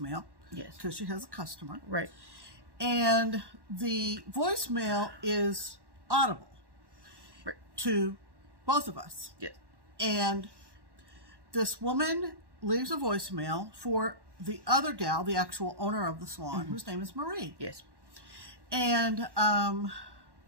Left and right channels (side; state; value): left; late; 1.1 ms